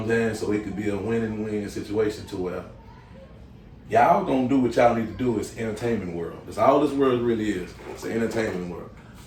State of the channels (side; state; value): both; identical; correlation 1.00